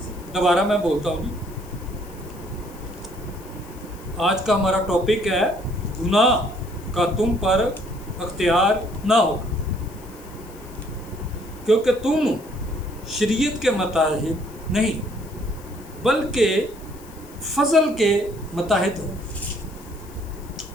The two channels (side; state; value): left; noise; hiss, 22 dB below the sound